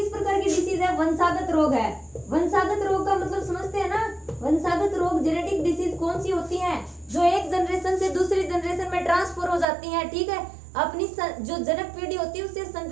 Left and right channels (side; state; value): left; drops out; at 9.7 s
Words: प्रकार की डिसीज है, वंशागत रोग है। वंशागत रोग का मतलब समझते हैं ना, वंशागत रोग जेनेटिक डिसीज कौन सी होती हैं, जो एक जनरेशन से दूसरी जनरेशन में ट्रांसफर हो जाती हैं, ठीक है। अपनी जो जनक पीढ़ी होती है उससे